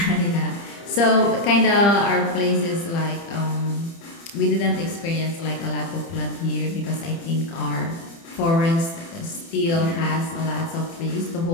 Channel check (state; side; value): late; right; 30 ms